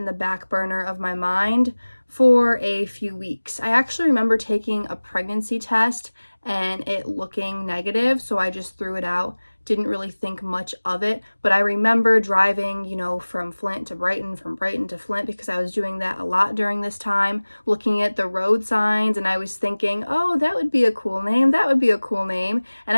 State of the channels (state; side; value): inverted; both; correlation -1.00